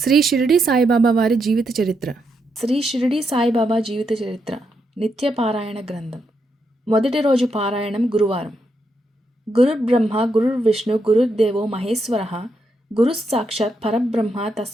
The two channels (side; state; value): both; normal; correlation 0.81